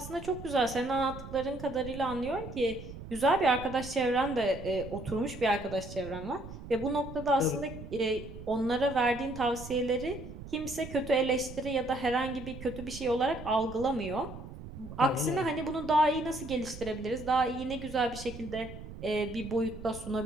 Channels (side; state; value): right; noise; rumble, 12 dB below the sound